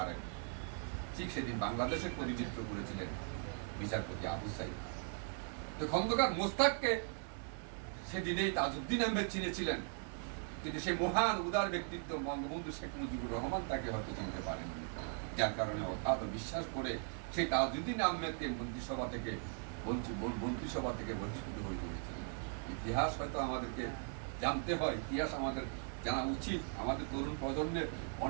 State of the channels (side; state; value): left; silent; 52 dB below the other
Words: ঠিক সেদিন বাংলাদেশের প্রতিনিধিত্ব করেছিলেন বিচারপতি আবু সাইদ। তো খন্দকার মোস্তাককে সেদিনেই তাজউদ্দিন আহমেদ চিনেছিলেন কিন্তু সেই মহান উদার ব্যক্তিত্ব বঙ্গবন্ধু শেখ মুজিবুর রহমান তাকে হয়তো চিনতে পারেননি, যার কারণে অগাধ বিশ্বাস করে সেই তাজউদ্দিন আহমেদকে মন্ত্রিসভা থেকে বঞ্চিত হয়ে পড়েছিলেন। ইতিহাস হয়তো আমাদেরকে জানতে হয়, ইতিহাস আমাদের জানা উচিত। আমাদের তরুণ প্রজন্মের